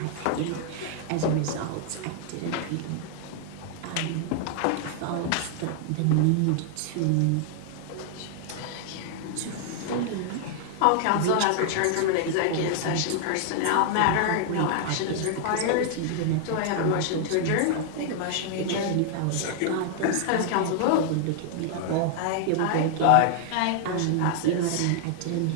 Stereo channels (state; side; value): different; both; correlation 0.00